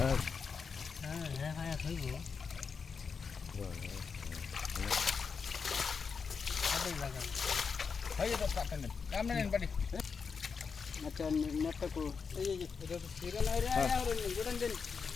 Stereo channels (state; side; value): quieter; right; 5.6 dB